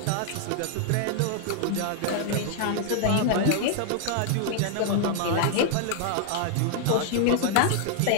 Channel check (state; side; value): different; both; correlation 0.00